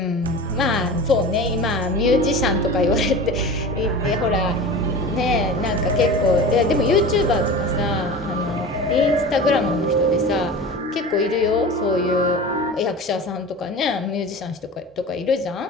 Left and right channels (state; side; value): normal; both; correlation 0.33